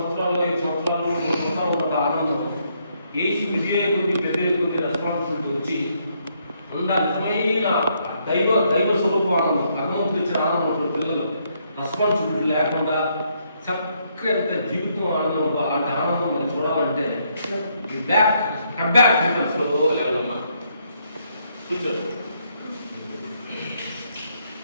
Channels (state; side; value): inverted; both; correlation -0.73